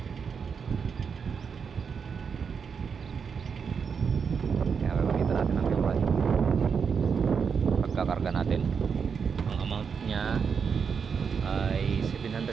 Ayan, gagamitan natin ng fuel rod pagkakarga natin. Ang amount niya ay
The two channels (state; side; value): quieter; left; 6.2 dB